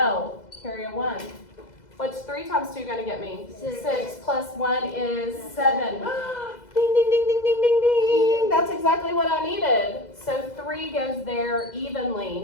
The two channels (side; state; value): right; late; 2.0 ms